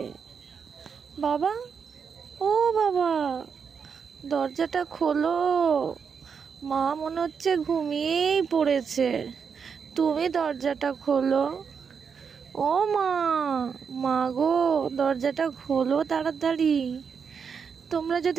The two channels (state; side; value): quieter; left; 6.3 dB